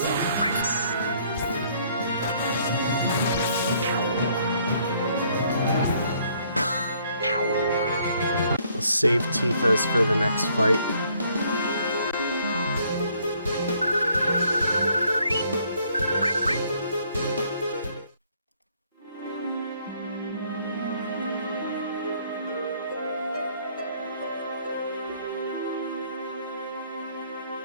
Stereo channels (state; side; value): inverted; both; correlation -0.65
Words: Save Tifa's for the next fight.